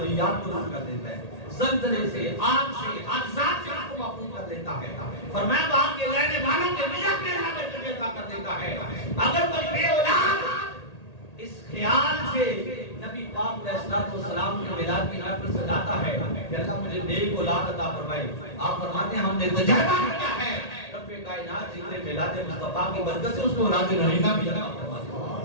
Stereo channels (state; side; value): late; right; 1.8 ms